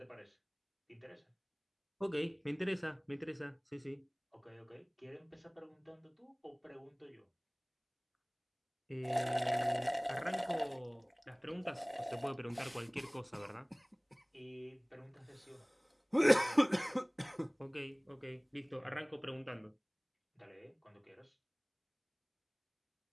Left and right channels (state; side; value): identical; both; correlation 1.00